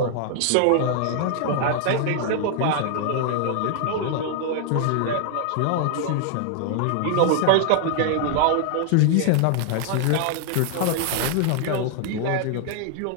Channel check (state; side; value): different; both; correlation 0.00